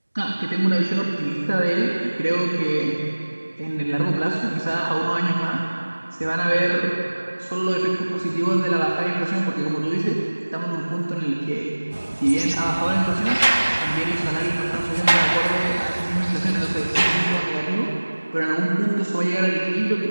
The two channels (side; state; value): both; inverted; correlation -1.00